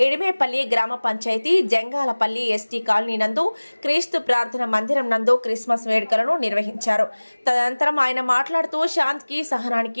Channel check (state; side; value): inverted; both; correlation -1.00